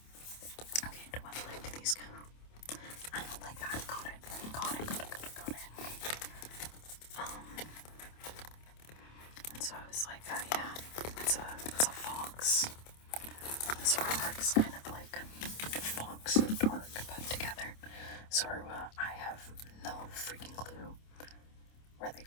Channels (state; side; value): late; right; 27 ms